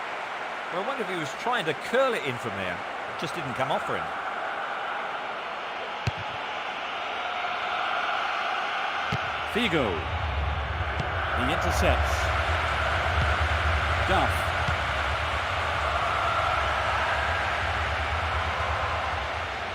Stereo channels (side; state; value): both; identical; correlation 1.00